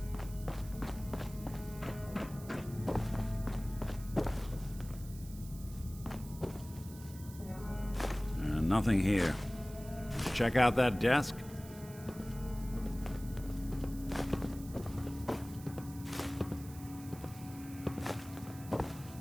Nothing here. Check out that desk.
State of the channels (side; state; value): right; noise; hiss, 18 dB below the sound